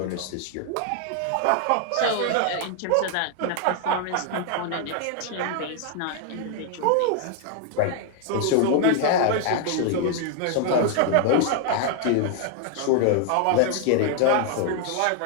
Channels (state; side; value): different; both; correlation 0.00